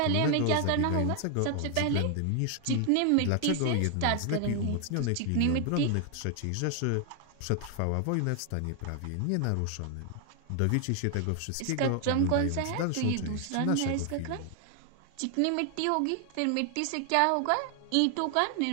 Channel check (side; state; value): both; different; correlation 0.00